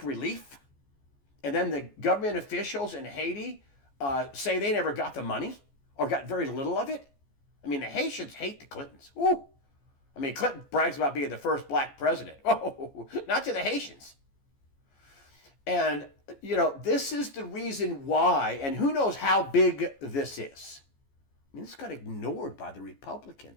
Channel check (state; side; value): late; right; 14 ms